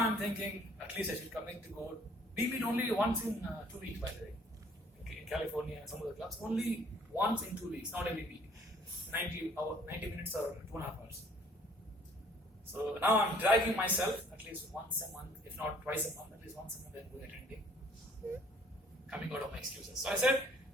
thinking, at least I should commit to go. We meet only once in 2 weeks, by the way. Okay, in California and some of the clubs, only once in 2 weeks, not every week. 90 minutes or 2.5 hours. So now I'm dragging myself at least once a month, if not twice a month, at least once a month I'm going attending. Coming out of my excuses. So I said,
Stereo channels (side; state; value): both; normal; correlation 0.58